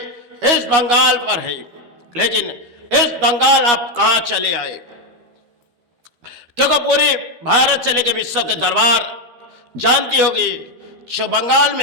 इस बंगाल पर है। लेकिन इस बंगाल आप कहां चले आए, क्योंकि पूरे भारत से लेकर विश्व के दरबार जानती होगी जो बंगाल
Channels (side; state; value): left; late; 12 ms